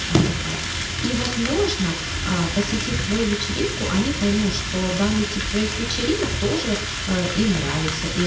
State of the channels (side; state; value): both; identical; correlation 1.00